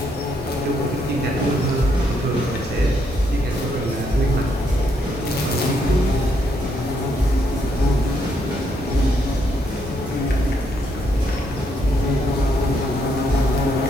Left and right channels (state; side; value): normal; both; correlation 0.75